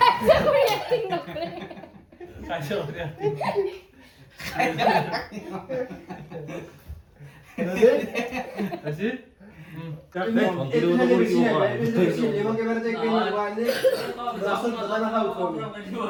এক্টিং নকৰে কাজিয়া কৰি acting। ৰেডি আজি এবং এবাৰে যে কেন মোবাইলে ৰাসন দাদা না উঠো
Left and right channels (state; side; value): identical; both; correlation 1.00